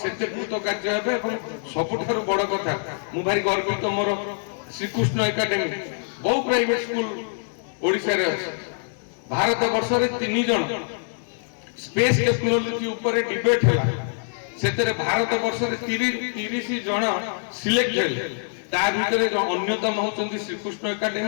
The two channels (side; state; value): right; silent; 62 dB below the other